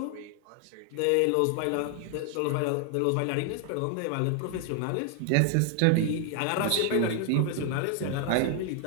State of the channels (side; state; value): both; different; correlation 0.00